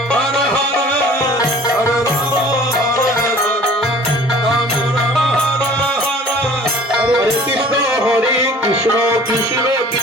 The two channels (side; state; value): both; normal; correlation 0.48